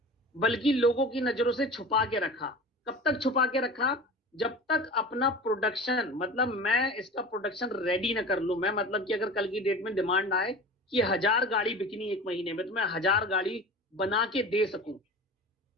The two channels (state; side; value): normal; both; correlation 0.36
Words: बल्कि लोगों की नजरों से छुपा के रखा। कब तक छुपा के रखा? जब तक अपना प्रोडक्शन, मतलब मैं इसका प्रोडक्शन रेडी ना कर लूं। मैं मतलब कि अगर कल की डेट में डिमांड आए कि 1000 गाड़ी बिकनी 1 महीने में, तो मैं 1000 गाड़ी बना के दे सकूं।